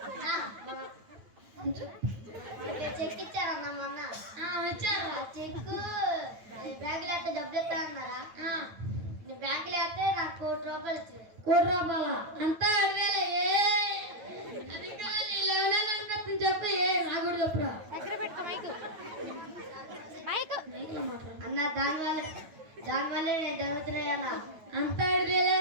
చెక్ ఇచ్చారన్నా మొన్న వచ్చారా చెక్కు బ్యాంకులో అయితే డబ్బులు ఇస్తానన్నారా బ్యాంకులో అయితే నాకు 1 కోటి రూపాయలు ఇచ్చారు 1 కోటి రూపాయల అంతా 2,000 అది కాదు 11 అనిపిస్తుంది చెప్పు నాకు కూడా చెప్పురా మైక్లో మాట్లాడు అన్న దానివల్లే నేను జరుగుతున్నాయన్నా అంతా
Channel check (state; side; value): late; left; 9.1 ms